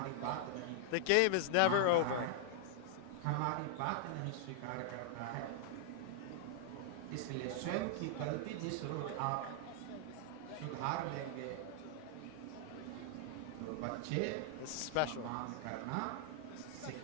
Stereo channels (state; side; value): different; both; correlation -0.01